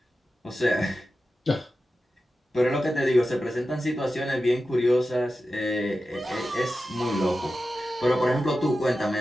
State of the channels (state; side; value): normal; both; correlation 0.92